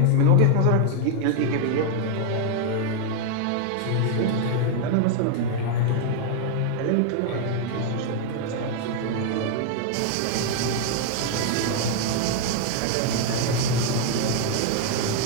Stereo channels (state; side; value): different; both; correlation 0.00